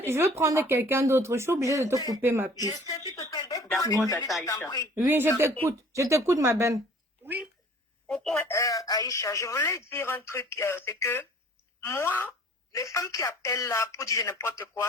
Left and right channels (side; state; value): both; normal; correlation 0.51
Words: veux prendre quelqu'un d'autre. Je suis obligée de te couper, ma puce. D'accord, Aïcha. Oui, je t'écoute. Je t'écoute, ma belle. Oui. Aïcha, je voulais dire un truc, c'est que moi, les femmes qui appellent là pour dire n'importe quoi,